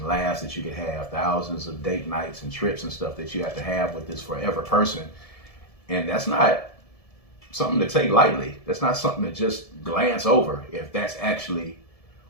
laughs that you could have. Thousands of date nights and trips and stuff that you have to have with this forever person. And that's not something to take lightly. That's not something to just glance over if that's actually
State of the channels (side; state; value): right; late; 1.7 ms